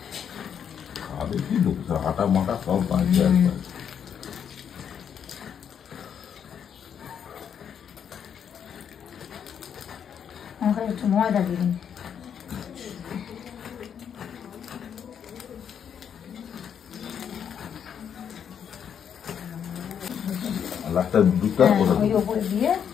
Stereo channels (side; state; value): right; quieter; 8.1 dB